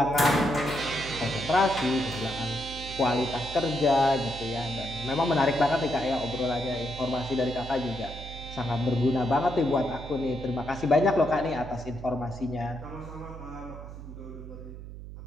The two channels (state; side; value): noise; right; hum, 12 dB below the sound